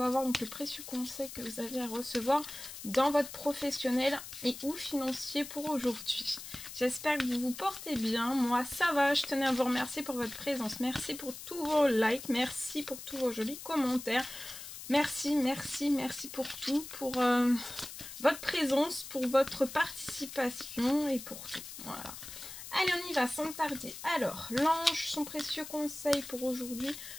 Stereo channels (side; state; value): left; noise; hiss, 11 dB below the sound